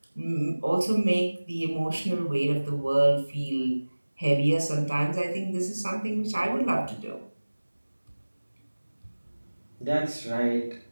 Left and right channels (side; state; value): both; inverted; correlation -1.00